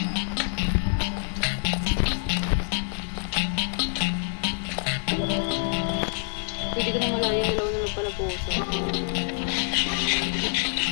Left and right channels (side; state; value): right; silent; 56 dB below the other